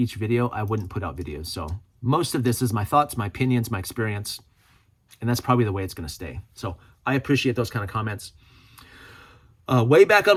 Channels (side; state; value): both; identical; correlation 1.00